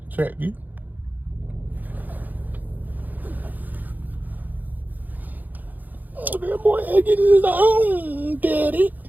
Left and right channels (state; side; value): late; left; 0.084 ms